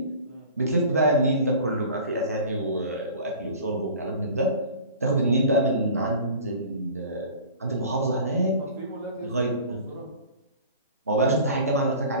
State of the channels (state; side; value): inverted; both; correlation -0.42